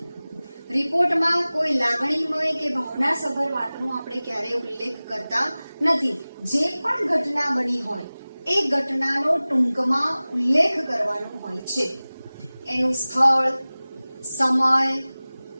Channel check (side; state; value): both; inverted; correlation -0.98